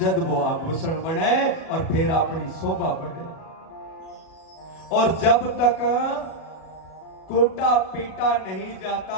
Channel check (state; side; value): late; right; 37 ms